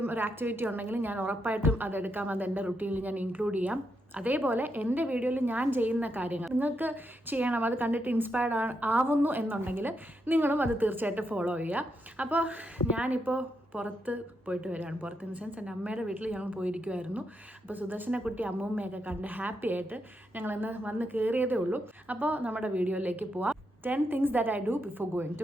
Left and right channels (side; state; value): both; normal; correlation 0.82